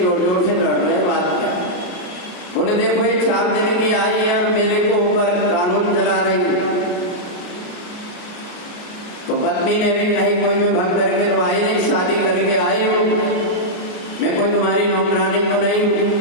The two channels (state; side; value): late; right; 33 ms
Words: जोर से लड़ रहे, बात क्या। बोले देखो ये 4 दिन की आई है और मेरे को ऊपर कानून चला रही है। तो पत्नी ने भी कही कोई मैं भग करके तो आई नहीं, शादी करके आई हूँ, मैं कोई तुम्हारी नौकरानी तो नहीं